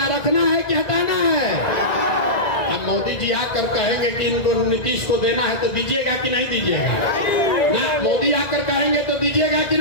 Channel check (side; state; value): right; late; 1.9 ms